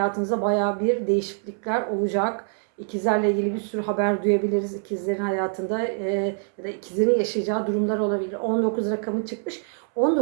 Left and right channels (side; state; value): left; silent; 62 dB below the other